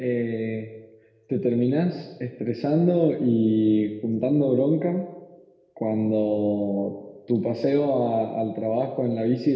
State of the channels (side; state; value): both; identical; correlation 1.00